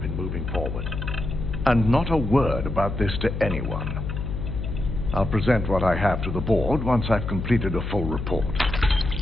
in moving forward. And not a word about this to anyone. I'll present what I have to the board once I've completed a full report.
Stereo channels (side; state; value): left; noise; hum, 4 dB below the sound